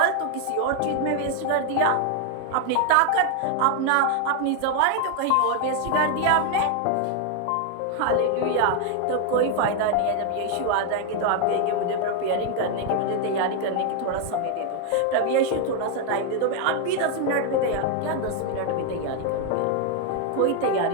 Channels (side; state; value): both; different; correlation 0.00